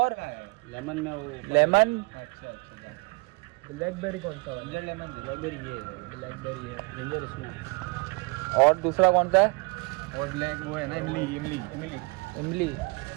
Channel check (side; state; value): left; quieter; 29.2 dB